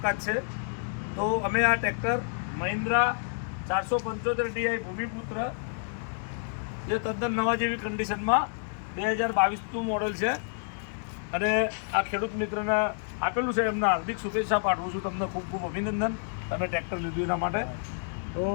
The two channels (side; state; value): right; silent; digital silence